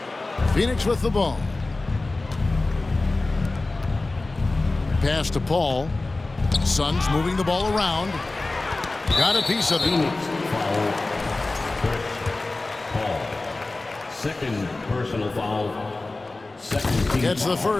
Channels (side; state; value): right; quieter; 3.2 dB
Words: Phoenix with the ball. Pass to Paul. Suns moving the ball around. Got a piece of it. Foul. Paul. Second personal foul. Second team Gets the foul.